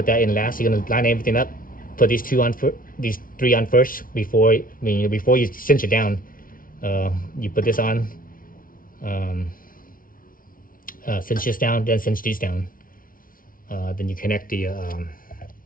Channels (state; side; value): late; right; 0.41 ms